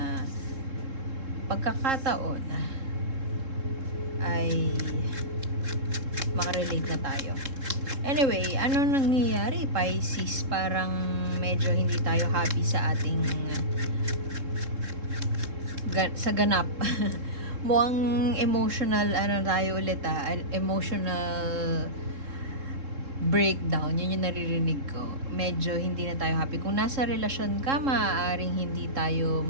pagkakataon ay makarelate na tayo. Anyway, ano nangyayari, Pisces? Parang medyo hindi tayo happy sa ating sa ganap. Mukhang emotional, ano tayo ulit emotional breakdown. Yun yung naririnig ko. Medyo hindi na tayo happy. Kung nasa relasyon ka, maaaring hindi tayo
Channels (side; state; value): left; late; 3.7 ms